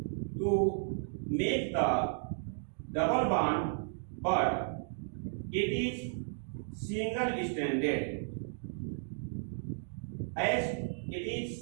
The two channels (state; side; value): silent; left; digital silence